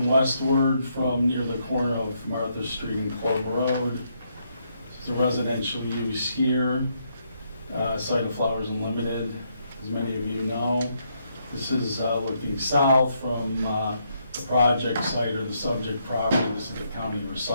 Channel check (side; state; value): both; inverted; correlation -0.76